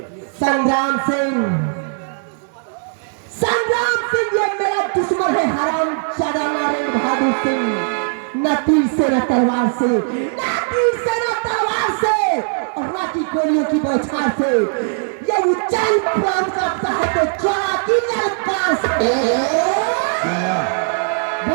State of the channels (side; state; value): left; silent; 60 dB below the other